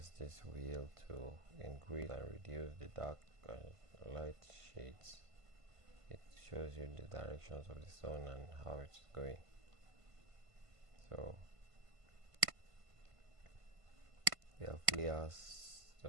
this wheel to increase and reduce the dark and light shades, it shows you the directions of the sun and how it's going. So we have layers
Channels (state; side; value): late; left; 1.5 ms